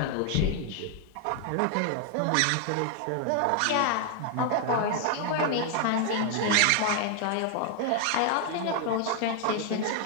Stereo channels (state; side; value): different; both; correlation 0.00